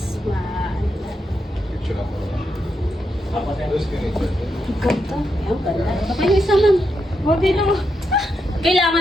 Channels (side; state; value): both; normal; correlation 0.83